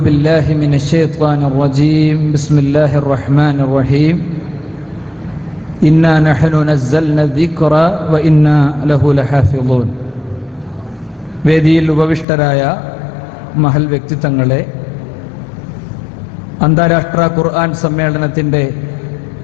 بالله من الشيطان الرجيم. بسم الله الرحمن الرحيم. إنا نحن نزلنا الذكر وإنا له لحافظون. വേദിയിൽ ഉപവിഷ്ടരായ മഹൽ വ്യക്തിത്വങ്ങളെ, അന്താരാഷ്ട്ര ഖുർആൻ സമ്മേളനത്തിൻ്റെ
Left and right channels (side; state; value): right; drops out; at 12.2 s